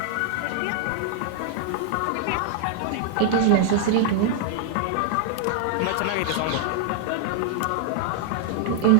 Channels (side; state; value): both; different; correlation 0.00